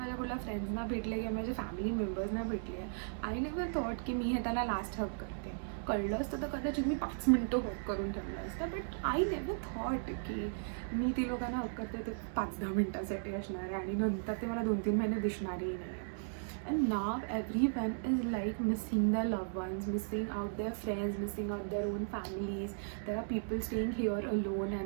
कुठल्या फ्रेंड्सना भेटले किंवा माझ्या family मेंबर्सना भेटले, I never thought की मी हे त्याला लास्ट हग करते. कळलं असतं तर कदाचित मी 5 मिनटं हग करून ठेवलं असतं, बट आय नेवर थॉट की मी ती लोकांना हग करते ते 5-10 मिनटासाठी असणार आहे आणि नंतर ते मला 2-3 महिने दिसणारही नाही. And now everyone is like missing their loved ones, missing out their friends, missing out their own families. There are people staying here alone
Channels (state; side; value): silent; left; digital silence